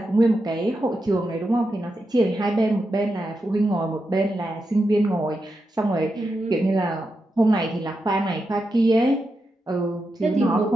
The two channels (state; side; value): normal; both; correlation 0.87